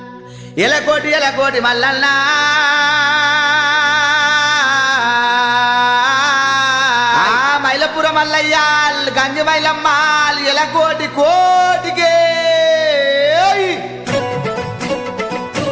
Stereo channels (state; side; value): identical; both; correlation 1.00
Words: ఎలకోటి మల్లన్నా మైలపుర మల్లయ్యా గంజి మైలమ్మ ఎలకోటి కోటికే